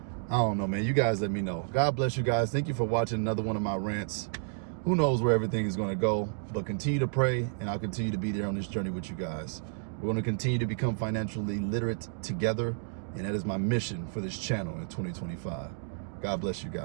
I don't know, man. You guys let me know. God bless you guys. Thank you for watching another one of my rants. Who knows where everything is going to go, but continue to pray, and I'll continue to be there on this journey with you guys. We're going to continue to become financially literate together, and that is my mission for this channel in 2025. God bless you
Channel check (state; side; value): silent; left; digital silence